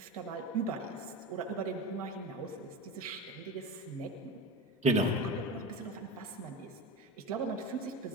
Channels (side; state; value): both; normal; correlation 0.26